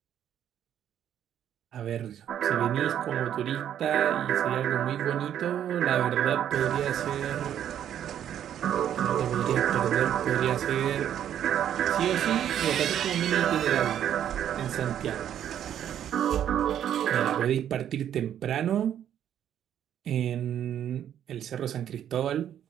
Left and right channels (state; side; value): quieter; left; 10.2 dB